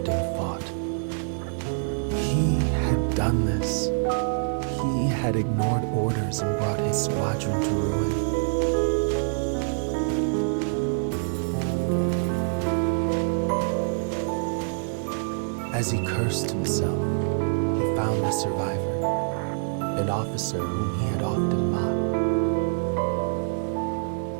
fought. He had done this. He had ignored orders and brought his squadron to ruin. As he cursed himself, he found the survivor, an officer whom he had often mocked.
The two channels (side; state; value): left; silent; digital silence